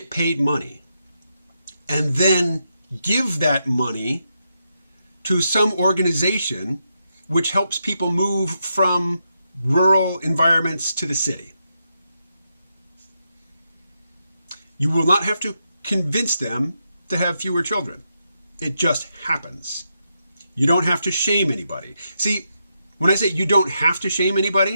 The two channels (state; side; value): inverted; both; correlation -0.83